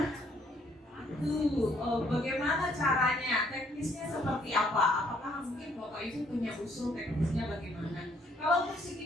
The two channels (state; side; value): normal; both; correlation 0.66